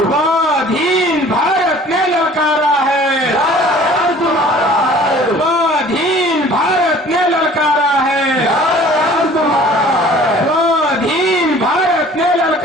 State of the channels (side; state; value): both; normal; correlation 0.49